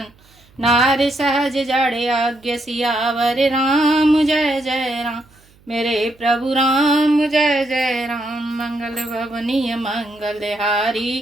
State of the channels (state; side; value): noise; right; hum, 30 dB below the sound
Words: नार सहज जड़े आज्ञ सियावर राम जय जय राम मेरे प्रभु राम जय जय राम मंगल भवनीय मंगल हारी